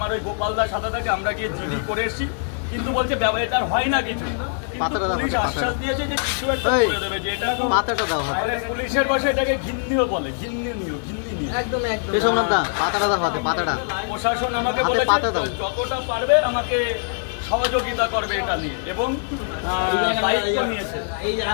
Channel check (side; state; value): right; silent; digital silence